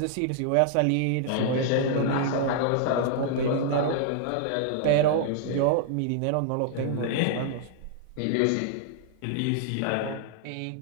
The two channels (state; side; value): different; both; correlation -0.01